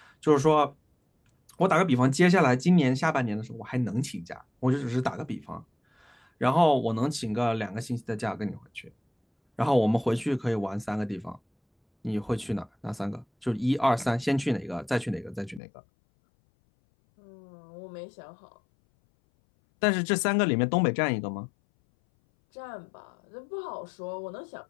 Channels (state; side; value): drops out; right; at 15.6 s